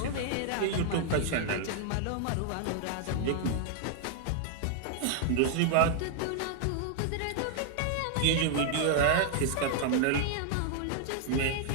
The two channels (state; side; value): different; both; correlation 0.00